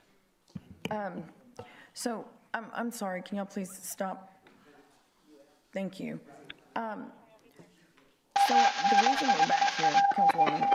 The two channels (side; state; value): both; identical; correlation 1.00